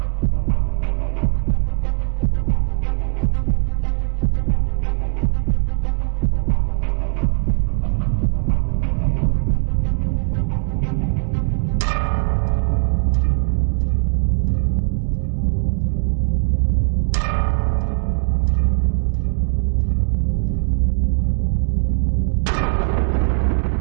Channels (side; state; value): left; silent; digital silence